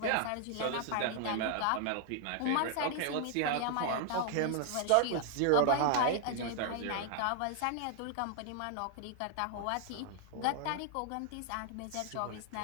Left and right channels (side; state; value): both; different; correlation 0.00